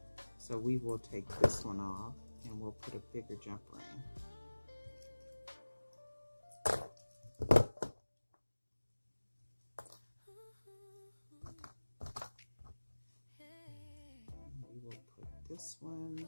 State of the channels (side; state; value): both; inverted; correlation -1.00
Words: So we will take this one off and we'll put a bigger jump ring. this